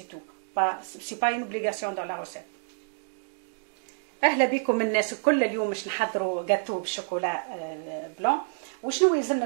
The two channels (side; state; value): left; silent; digital silence